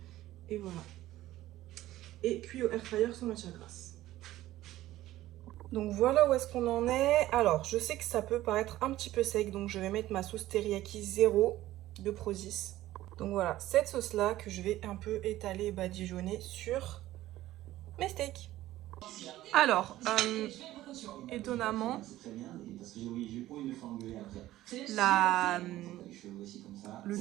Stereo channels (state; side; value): quieter; left; 15.2 dB